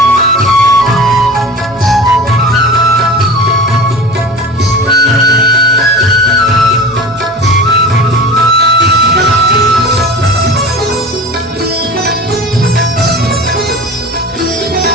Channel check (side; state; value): both; normal; correlation 0.35